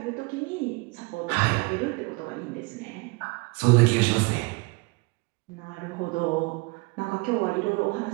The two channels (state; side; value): quieter; left; 27.6 dB